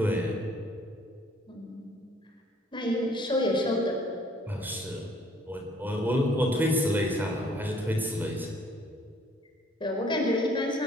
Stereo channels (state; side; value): normal; both; correlation 0.60